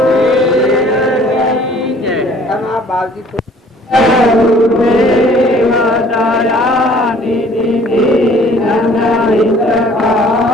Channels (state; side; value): normal; both; correlation 0.54